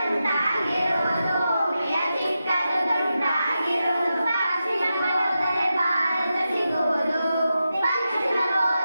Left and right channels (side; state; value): both; inverted; correlation -0.90